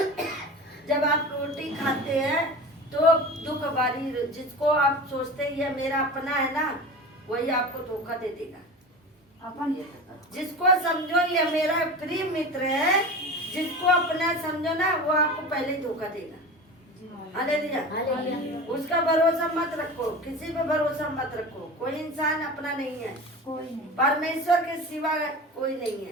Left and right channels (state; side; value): normal; both; correlation 0.32